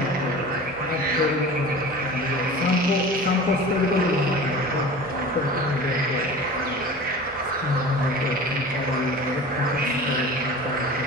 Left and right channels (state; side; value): normal; both; correlation 0.37